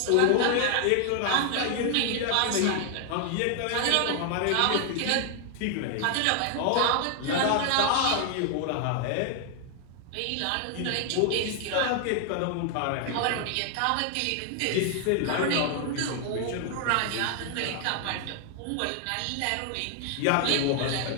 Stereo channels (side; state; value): both; different; correlation 0.00